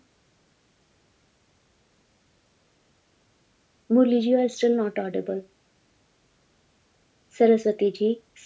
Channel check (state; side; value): identical; both; correlation 1.00